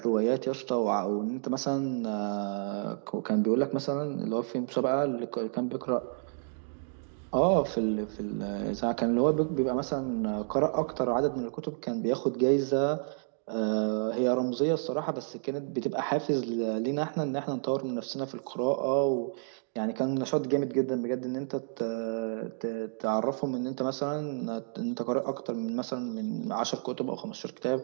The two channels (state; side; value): silent; left; digital silence